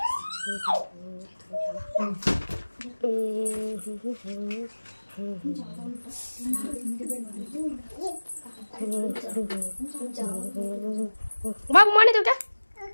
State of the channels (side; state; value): both; inverted; correlation -1.00